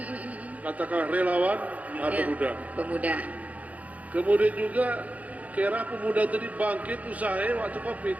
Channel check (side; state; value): left; late; 0.071 ms